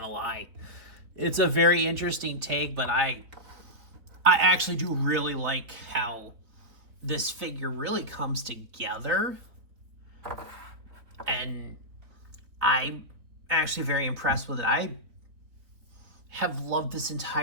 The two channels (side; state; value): left; late; 3.8 ms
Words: lie. It's a very interesting take, but I actually do really like how this figure really comes together. And I'm actually very impressed with it. I have loved this